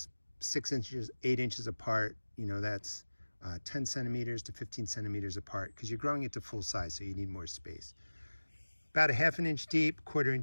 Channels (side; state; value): both; inverted; correlation -1.00